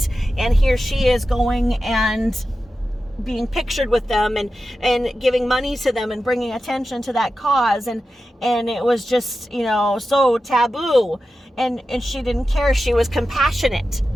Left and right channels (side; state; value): both; normal; correlation 0.92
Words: And here she is going and being pictured with them and giving money to them and bringing attention to that cause. And it was just, so taboo. And she didn't care. She was compassionate.